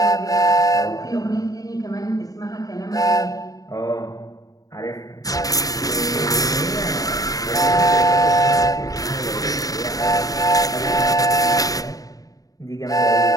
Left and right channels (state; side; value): late; right; 0.18 ms